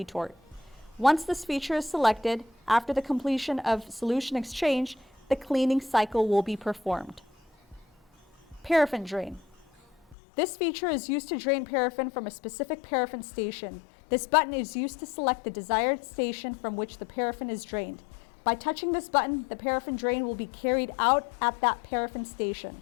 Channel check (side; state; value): right; drops out; at 10.2 s